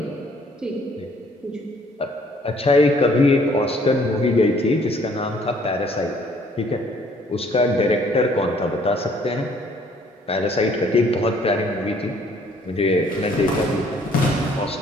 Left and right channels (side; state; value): both; normal; correlation 0.61